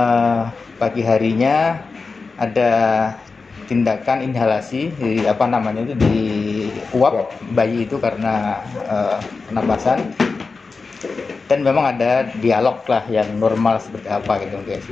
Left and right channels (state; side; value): quieter; right; 4.3 dB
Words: pagi harinya ada tindakan inhalasi di uap bayi itu karena penapasan, dan memang ada dialog lah yang normal seperti apa gitu, kayak